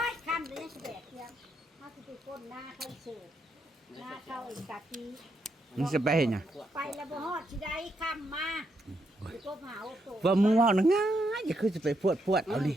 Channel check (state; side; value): normal; both; correlation 0.79